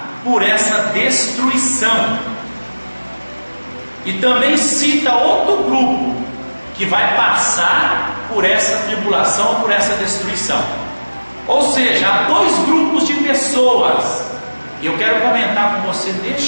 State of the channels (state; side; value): inverted; both; correlation -1.00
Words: por essa destruição, e também cita outro grupo que vai passar por essa tribulação, por essa destruição. Ou seja, há dois grupos de pessoas. E eu quero comentar com você